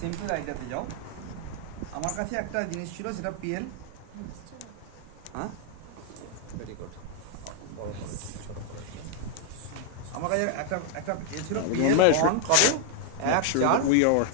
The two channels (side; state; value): both; different; correlation 0.00